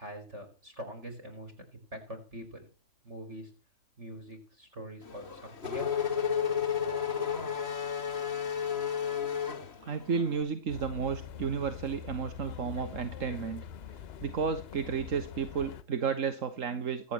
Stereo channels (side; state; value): left; late; 3.1 ms